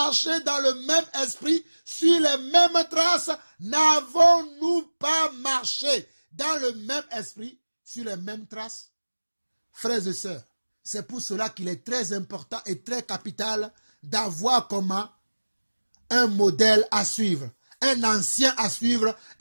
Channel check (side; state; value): both; inverted; correlation -1.00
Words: dans le même esprit, sur les mêmes traces? N'avons-nous pas marché dans le même esprit, sur les mêmes traces? Frères et sœurs, c'est pour cela qu'il est très important et très capital d'avoir comment un modèle à suivre, un ancien à suivre